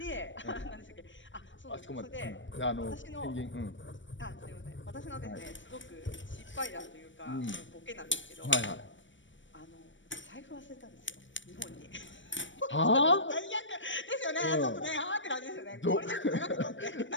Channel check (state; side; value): late; right; 0.55 ms